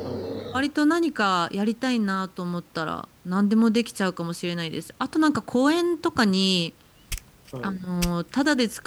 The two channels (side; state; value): both; identical; correlation 1.00